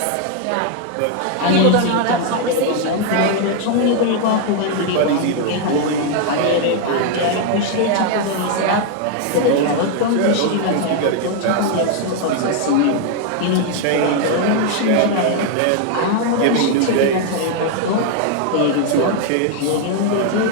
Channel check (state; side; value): different; both; correlation 0.00